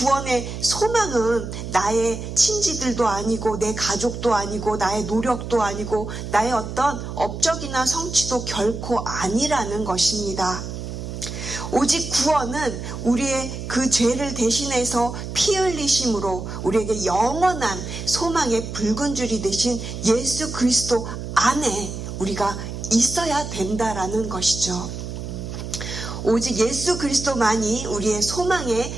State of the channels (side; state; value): right; noise; hum, 7 dB below the sound